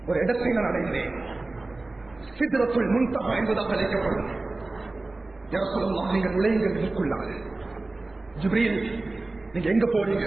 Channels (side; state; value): left; quieter; 3.1 dB